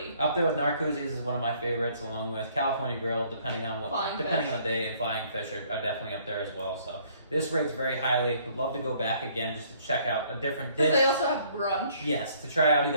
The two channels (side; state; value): both; inverted; correlation -0.62